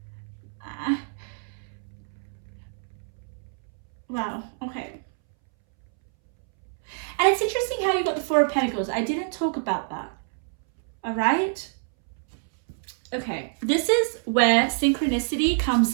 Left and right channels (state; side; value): silent; left; 61 dB below the other